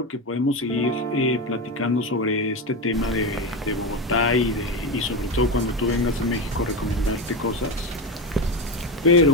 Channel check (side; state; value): both; normal; correlation 0.17